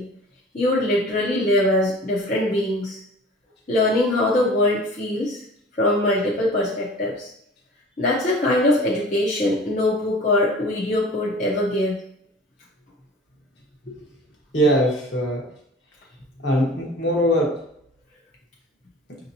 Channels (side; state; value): both; normal; correlation 0.43